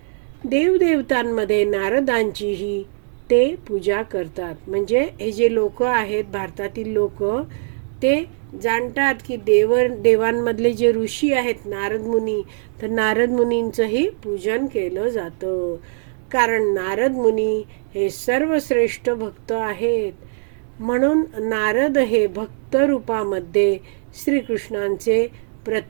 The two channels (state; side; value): silent; left; digital silence